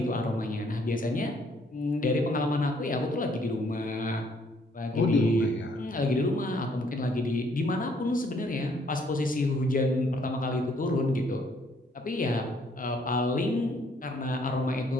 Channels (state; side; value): normal; both; correlation 0.65